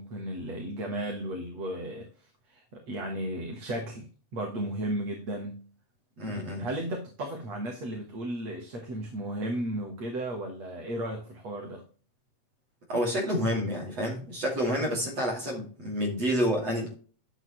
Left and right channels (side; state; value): left; late; 8.1 ms